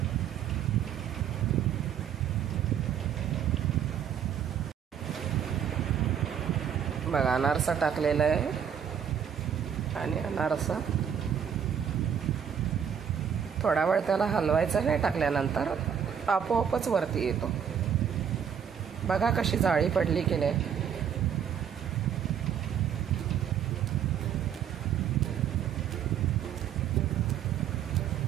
बघा अनारसा टाकलेला आहे आणि अनारसा थोडा वेळ त्याला हलवायचा नाही. टाकल्यानंतर आपोआपच वरती येतो. बघा कशी जाळी पडली की नाही.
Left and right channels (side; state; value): left; quieter; 8.3 dB